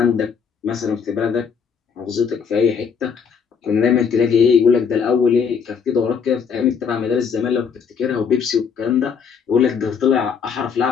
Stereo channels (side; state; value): right; quieter; 6.4 dB